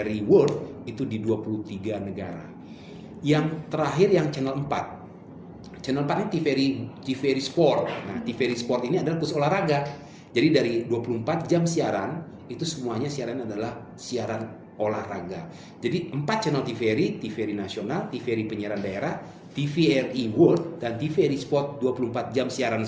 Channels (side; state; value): both; identical; correlation 1.00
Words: World itu di 23 negara. Yang terakhir yang channel 4. Channel 4 ini TVRI Sport. Nah, TVRI Sport ini adalah khusus olahraga. Jadi dari 24 jam siaran, itu semuanya siaran adalah siaran olahraga. Jadi 4 channel TVRI nasional, TVRI penyiaran daerah, TVRI World, dan TVRI Sport 24 jam siaran